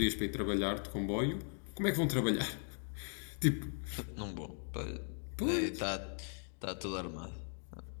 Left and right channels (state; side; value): silent; right; 52 dB below the other